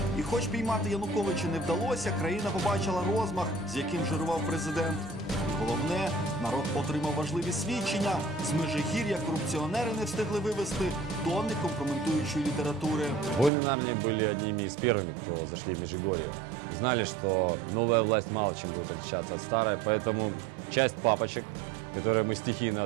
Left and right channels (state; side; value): drops out; left; at 13.5 s